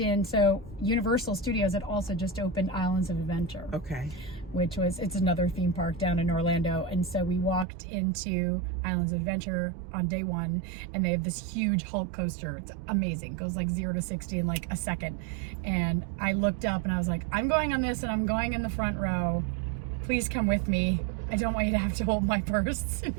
so Universal Studios had also just opened Islands of Adventure. Okay. Which was, it's another theme park down in Orlando. And so we walked into Islands of Adventure on day one, and they have this huge Hulk coaster. It's amazing. It goes like 0 to 60 in like a second. And I looked up and I was like, I'm going on this and I'm going in the front row. Please come with me. I don't want you to have to hold my purse. And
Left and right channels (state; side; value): drops out; left; at 7.7 s